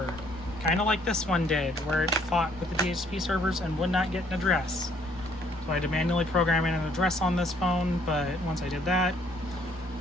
kind of like this one did, where it fought with the DHCP servers and would not get an address. So I had to manually program in an address on this phone, but once I did that,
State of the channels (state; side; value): normal; both; correlation 0.64